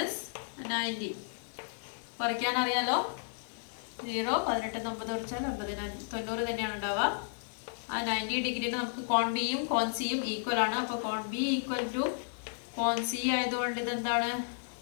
90. കുറയ്ക്കാൻ അറിയാലോ. 0 18 9 കുറച്ചാൽ 90 തന്നെയാണ് ഉണ്ടാവുക. ആ 90 ഡിഗ്രിയിൽ നമുക്ക് കോൺ ബിയും കോൺ സിയും ഈക്വൽ ആണ്. അപ്പോൾ കോൺ ബി ഈക്വൽ ടു കോൺ സി ആയതുകൊണ്ട് ഇതെന്താണ്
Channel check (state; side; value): silent; right; digital silence